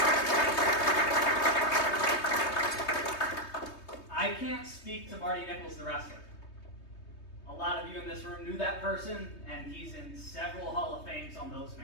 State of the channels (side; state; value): right; late; 3.2 ms